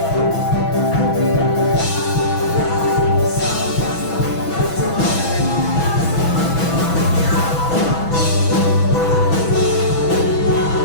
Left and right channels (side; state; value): right; late; 6.1 ms